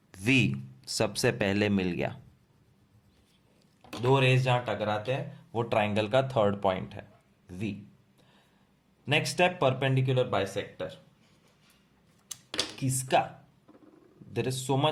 वी सबसे पहले मिल गया. दो रेस जहां टकराते हैं वो ट्राइंगल का थर्ड पॉइंट है, V. Next step, perpendicular bisector. किसका? There is so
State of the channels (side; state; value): both; identical; correlation 1.00